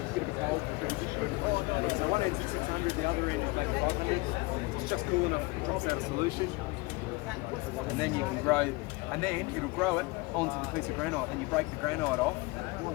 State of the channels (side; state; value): right; quieter; 23.9 dB